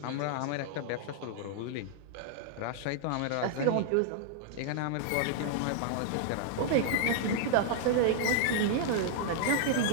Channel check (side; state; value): both; different; correlation -0.01